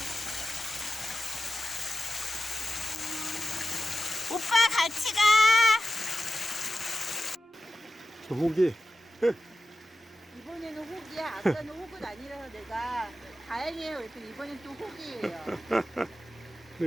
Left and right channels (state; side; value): normal; both; correlation 0.91